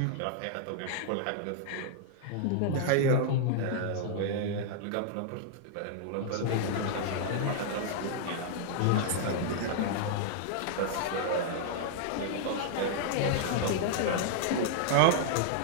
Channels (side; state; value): both; different; correlation -0.01